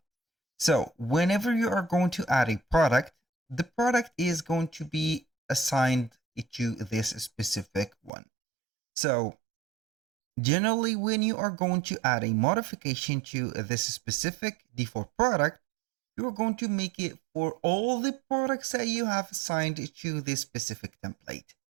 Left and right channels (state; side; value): drops out; left; at 8.1 s